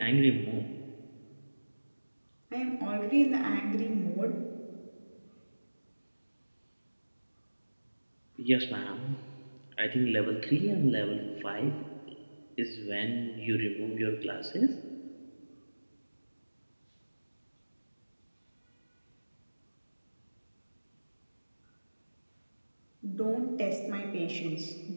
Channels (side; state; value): both; inverted; correlation -1.00